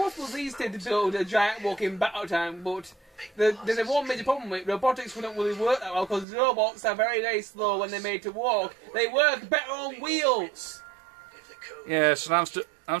these days to build a giant walking battle tank, but there's one major problem with it. Robotics wouldn't really work that well because robots are very, very slow when they're made to walk. They work better on wheels. if the code Yes, and I'm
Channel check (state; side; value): drops out; left; at 6.2 s